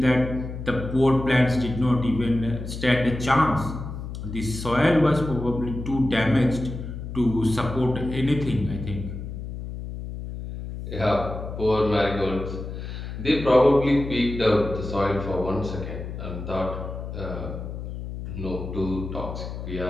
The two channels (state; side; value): noise; left; hum, 8 dB below the sound